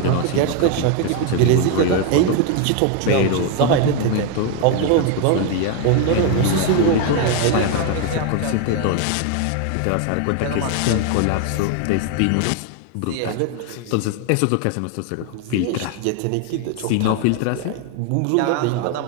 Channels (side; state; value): both; different; correlation 0.01